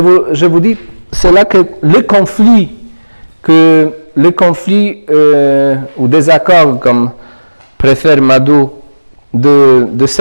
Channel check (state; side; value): inverted; both; correlation -1.00